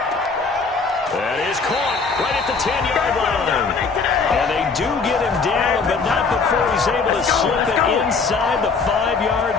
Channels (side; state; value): right; quieter; 4.7 dB